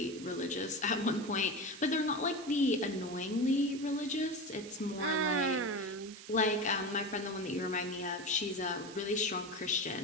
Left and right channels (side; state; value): right; noise; hiss, 15 dB below the sound